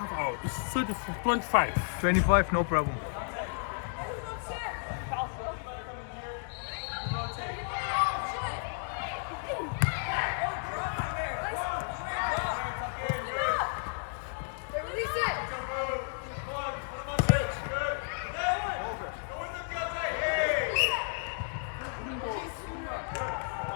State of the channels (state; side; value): silent; right; 56 dB below the other